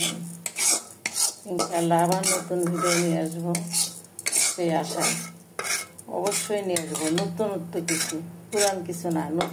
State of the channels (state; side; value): identical; both; correlation 1.00